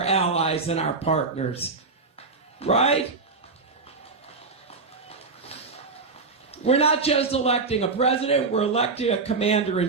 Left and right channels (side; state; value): left; quieter; 4.2 dB